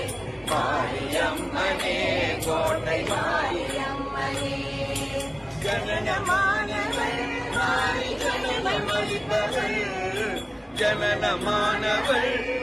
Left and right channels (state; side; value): identical; both; correlation 1.00